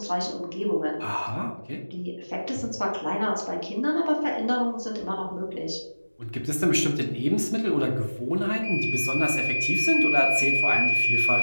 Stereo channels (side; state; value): both; inverted; correlation -1.00